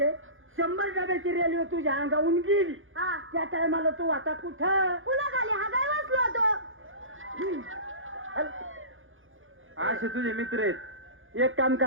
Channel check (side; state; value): left; late; 0.58 ms